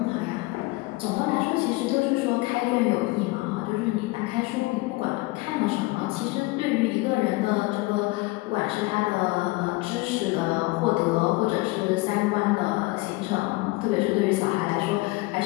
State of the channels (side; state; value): right; quieter; 22.1 dB